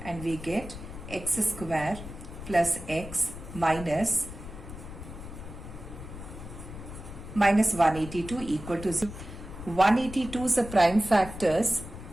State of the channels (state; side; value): noise; left; rumble, 12 dB below the sound